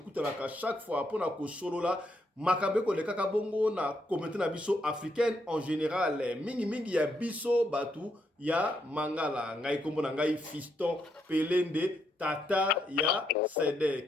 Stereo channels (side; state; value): both; normal; correlation 0.77